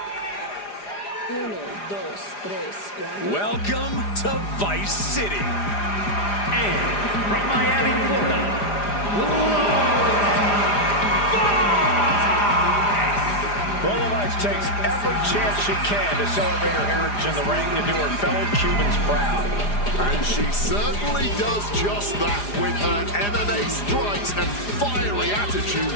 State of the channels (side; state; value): right; late; 4.9 ms